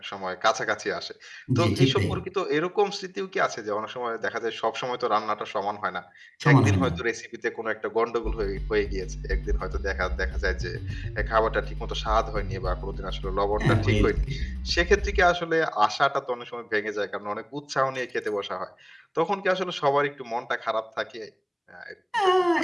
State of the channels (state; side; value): identical; both; correlation 1.00